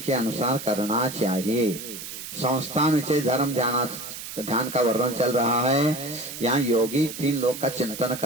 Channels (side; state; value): right; noise; hiss, 10 dB below the sound